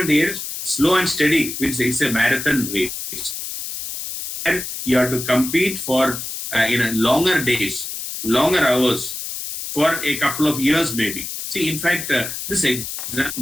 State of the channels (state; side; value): noise; left; hiss, 7 dB below the sound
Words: here is slow and steady, which is a marathon race. And you have to compete for longer days, longer hours, for a couple of years maybe. See, in fact, this